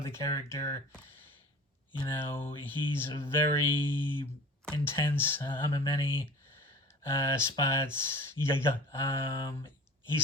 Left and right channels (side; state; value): both; normal; correlation 0.41